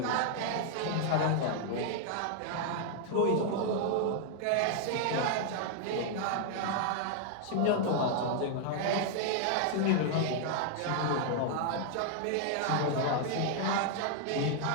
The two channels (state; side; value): different; both; correlation 0.00